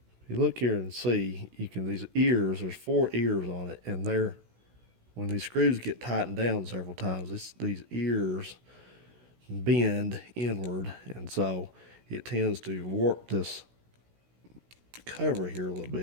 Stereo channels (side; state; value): left; late; 16 ms